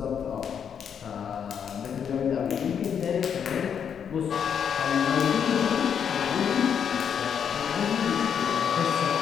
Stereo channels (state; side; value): quieter; right; 7.8 dB